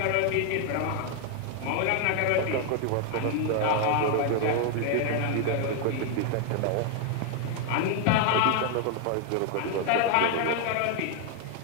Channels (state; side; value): different; both; correlation 0.00